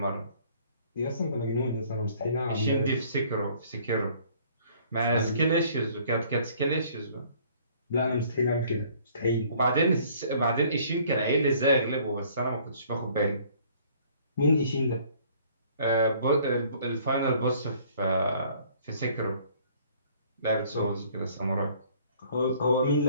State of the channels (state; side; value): inverted; both; correlation -0.57